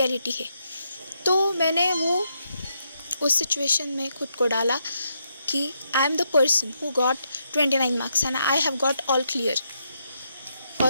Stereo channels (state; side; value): inverted; both; correlation -0.79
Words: है। तो मैंने वो उस सिचुएशन में खुद को डाला कि I am the person who got 29 marks and I have got all clear.